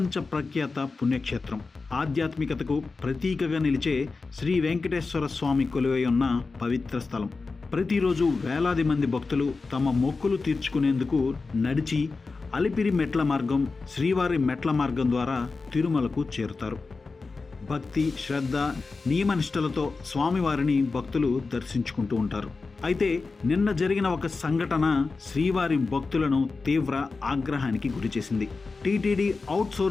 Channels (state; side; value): quieter; right; 4.1 dB